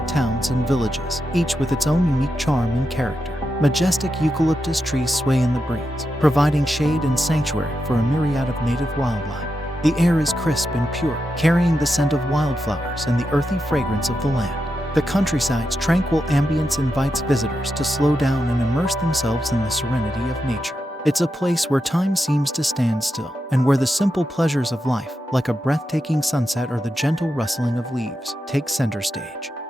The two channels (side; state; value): both; normal; correlation 0.87